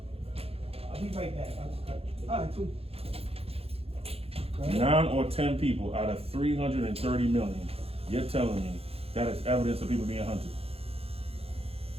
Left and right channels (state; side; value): late; left; 0.28 ms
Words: I'll be right back. All right, cool. 9 or 10 people out of 330 million, you're telling me that is evidence of people being hunted.